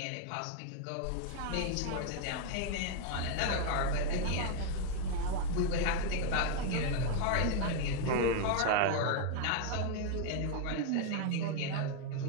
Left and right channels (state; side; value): different; both; correlation 0.00